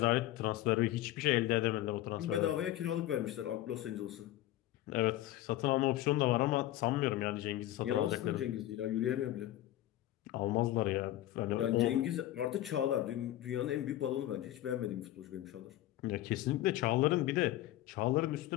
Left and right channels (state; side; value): quieter; right; 14.6 dB